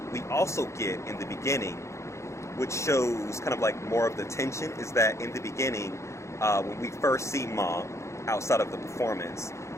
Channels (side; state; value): right; late; 0.14 ms